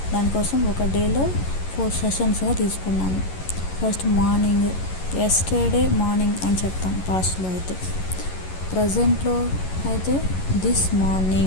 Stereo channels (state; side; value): late; right; 11 ms